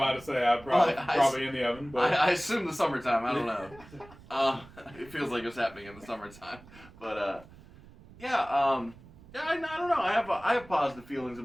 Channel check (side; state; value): right; noise; rumble, 21 dB below the sound